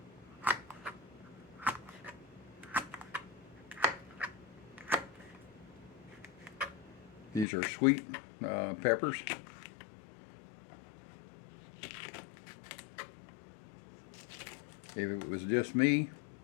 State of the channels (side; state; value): right; drops out; at 7.5 s